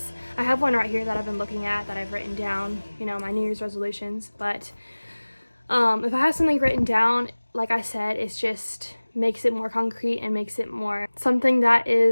I have one right here that I've been looking at, that I've written down, you know, my New Year's resolutions. But if I have something written down, like I said, it's just makes it more concrete and makes it more something that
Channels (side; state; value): both; inverted; correlation -1.00